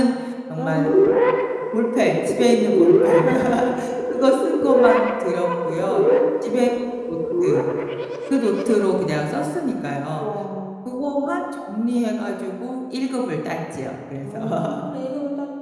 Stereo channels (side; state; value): both; identical; correlation 1.00